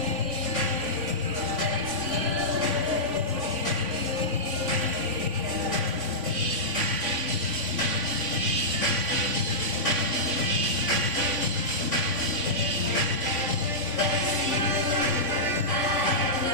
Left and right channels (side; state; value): left; late; 3.5 ms